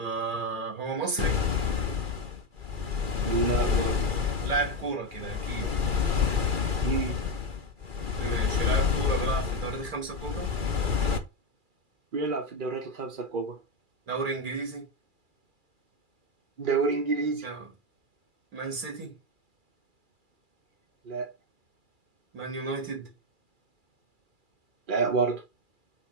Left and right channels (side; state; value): left; late; 2.4 ms